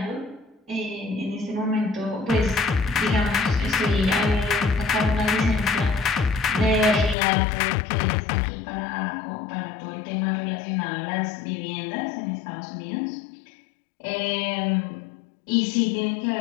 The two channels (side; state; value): right; drops out; at 7.2 s